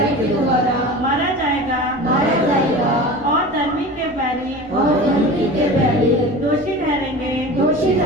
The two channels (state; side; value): normal; both; correlation 0.35